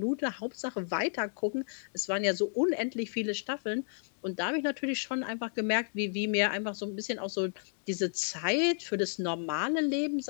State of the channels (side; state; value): right; silent; digital silence